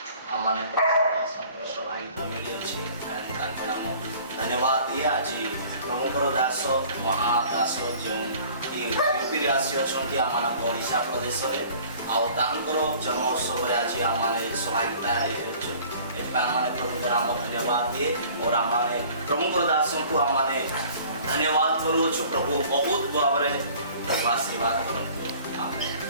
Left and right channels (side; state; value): both; inverted; correlation -0.49